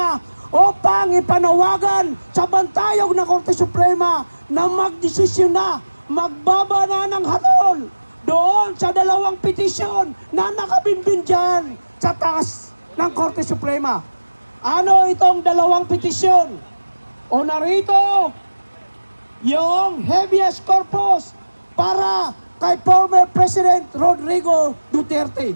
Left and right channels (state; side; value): inverted; both; correlation -1.00